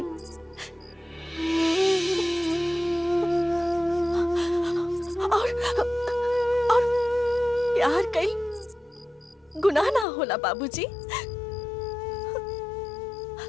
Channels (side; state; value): right; drops out; at 10.1 s